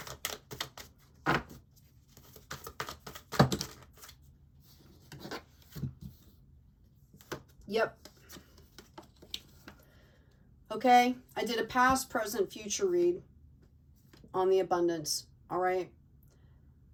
Yep. Okay, I did a past, present, future read on the abundance. All right.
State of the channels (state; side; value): identical; both; correlation 1.00